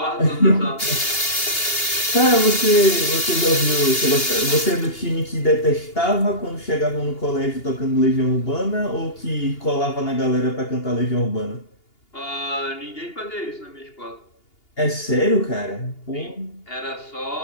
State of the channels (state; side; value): late; right; 2.8 ms